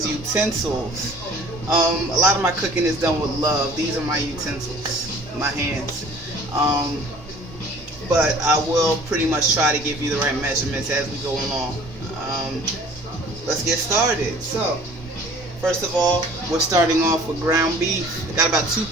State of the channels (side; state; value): both; normal; correlation 0.50